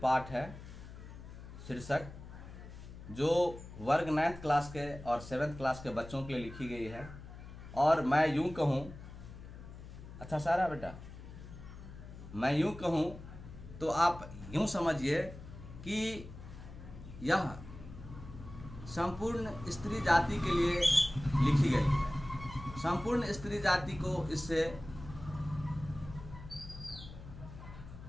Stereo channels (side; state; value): left; noise; hum, 14 dB below the sound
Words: पाठ है शीर्षक, जो वर्ग 9th क्लास के और 7th क्लास के बच्चों के लिए लिखी गई है। और मैं यूं कहूं, अच्छा सारा बेटा, मैं यूं कहूं तो आप यूं समझिए कि यह संपूर्ण स्त्री जाति के लिए लिखी गई है। संपूर्ण स्त्री जाति को इससे